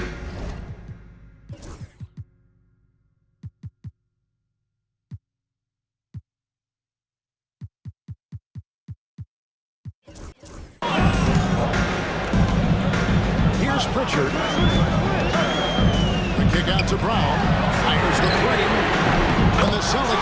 Here's Pritchard. The kick out to Brown. Fires the three. And the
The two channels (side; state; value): both; identical; correlation 1.00